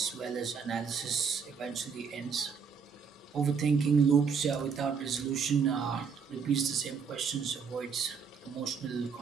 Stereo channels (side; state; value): left; quieter; 6.2 dB